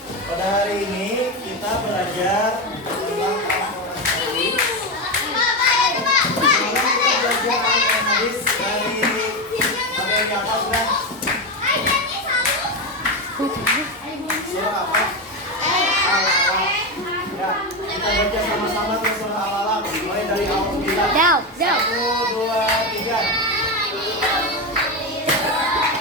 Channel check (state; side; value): normal; both; correlation 0.14